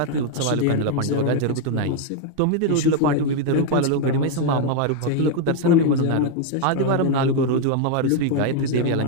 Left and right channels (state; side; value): different; both; correlation 0.00